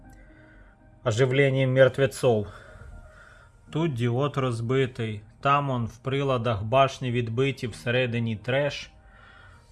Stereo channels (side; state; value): both; identical; correlation 1.00